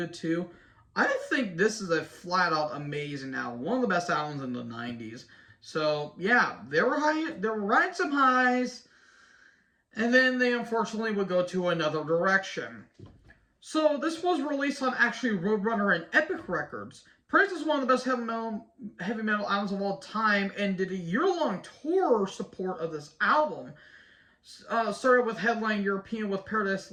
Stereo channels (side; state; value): both; identical; correlation 1.00